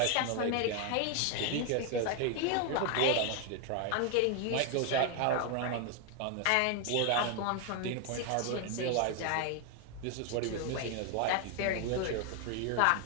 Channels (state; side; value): different; both; correlation 0.01